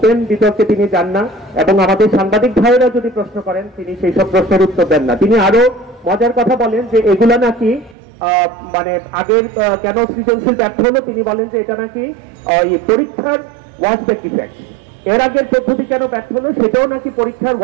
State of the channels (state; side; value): drops out; left; at 8.0 s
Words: বিতর্কে তিনি যান না, এবং আমাদের সাংবাদিক ভাইয়েরা যদি প্রশ্ন করেন তিনি সেই সব প্রশ্নের উত্তর দেন না। তিনি আরো মজার কথা বলেন যে এগুলা নাকি মানে আগের কেন সৃজনশীল ব্যর্থ হলো, তিনি বলেন যে এটা নাকি পরীক্ষার ওয়ার্কবেক ইফেক্ট। এর আগের পদ্ধতি কেন ব্যর্থ হলো সেটাও নাকি পরীক্ষার